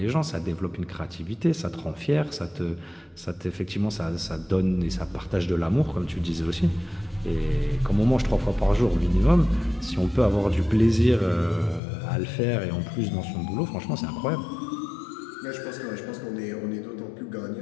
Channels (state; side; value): drops out; right; at 11.8 s